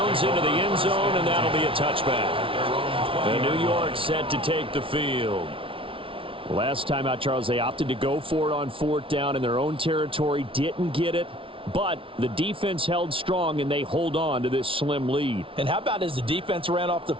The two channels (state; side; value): late; left; 0.25 ms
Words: into the end zone, and that'll be a touchback. And New York set to take the field. Last time out, Charles, they opted to go for it on 4th down in their own territory. Didn't get it, but the defense held strong, and they hold on to this slim lead. And how about as the defense ran off the